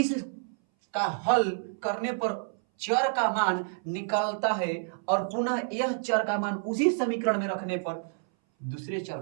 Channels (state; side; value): silent; left; 59 dB below the other